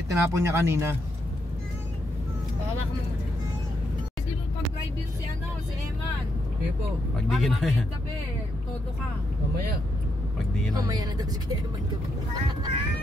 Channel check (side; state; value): both; normal; correlation 0.80